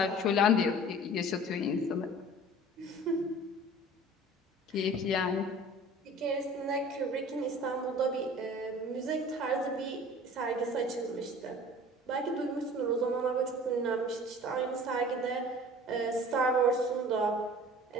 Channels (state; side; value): normal; both; correlation 0.44